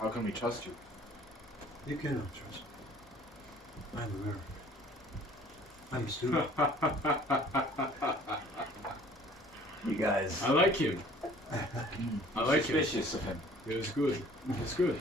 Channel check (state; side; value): normal; both; correlation 0.52